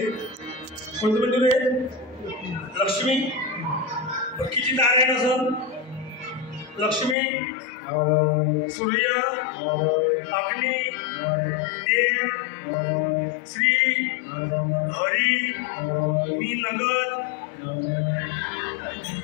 कोणतं मंदिर आहे? लक्ष्मी. किती तार आहे कसं? लक्ष्मी, सूर्य, अग्नी, देव, श्री, हरी, मी नगर,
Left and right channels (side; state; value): right; drops out; at 7.2 s